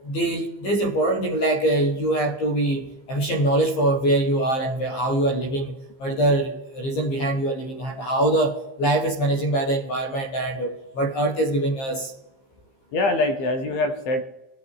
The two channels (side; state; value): right; late; 15 ms